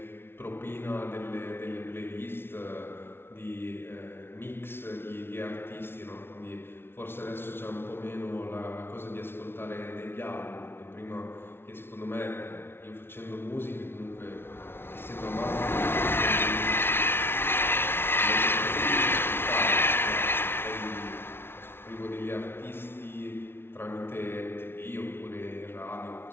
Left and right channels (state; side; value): late; right; 0.11 ms